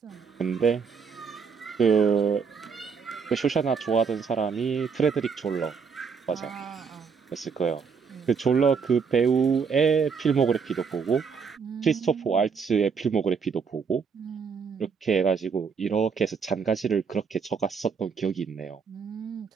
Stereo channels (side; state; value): left; quieter; 5.9 dB